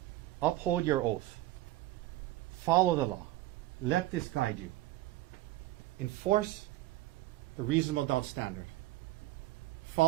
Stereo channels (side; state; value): left; quieter; 16.5 dB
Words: Uphold your oath. Follow the law. Let this guide you. Enforce the reasonable doubt standard.